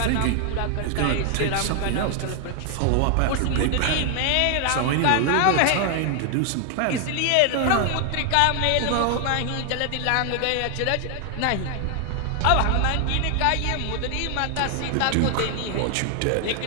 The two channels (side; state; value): both; different; correlation 0.00